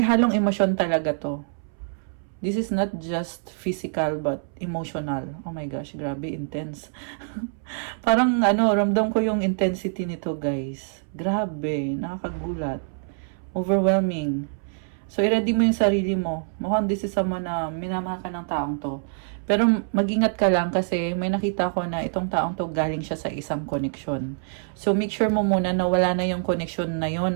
emosyon talaga to. This is not just physical but emotional. Oh my gosh, grabe, intense. Parang ramdam ko yung intensity nito, guys. Grabe, nakakagulat. Overwhelming. So, i-ready mo yung sarili mo. Mukhang this is someone na minamahal ka ng taong to. Pero mag-ingat ka lang kasi may nakita ko na itong taong to galing siya sa isang connection. So, make sure mo muna na wala na yung connection na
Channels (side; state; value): left; silent; 62 dB below the other